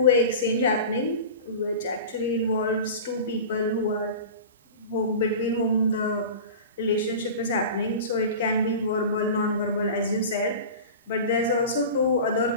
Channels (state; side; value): inverted; both; correlation -0.33